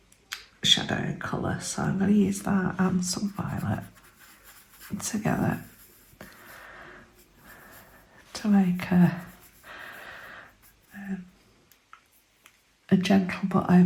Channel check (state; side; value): identical; both; correlation 1.00